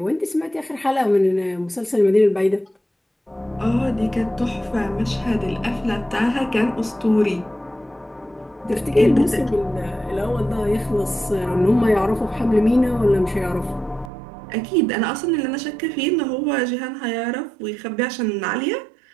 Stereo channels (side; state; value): left; drops out; at 14.1 s